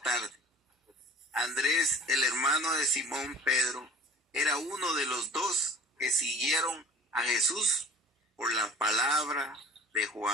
Andrés, el hermano de Simón Pedro, era uno de los 2 que siguieron a Jesús por la palabra de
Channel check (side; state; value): both; normal; correlation 0.44